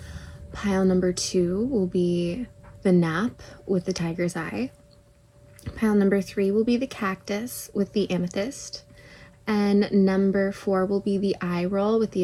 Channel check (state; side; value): identical; both; correlation 1.00